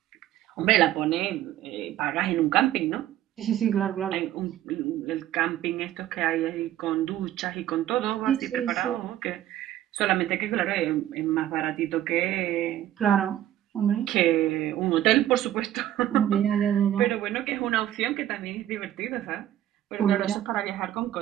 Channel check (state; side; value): quieter; left; 12.6 dB